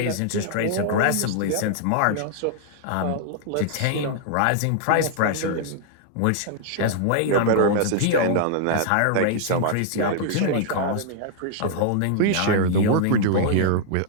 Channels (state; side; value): different; both; correlation -0.01